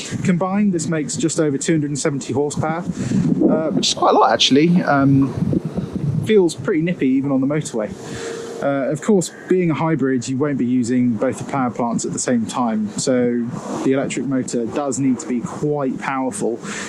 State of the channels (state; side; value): identical; both; correlation 1.00